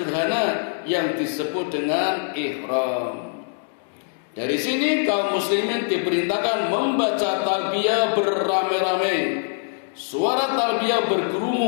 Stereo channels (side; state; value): right; silent; digital silence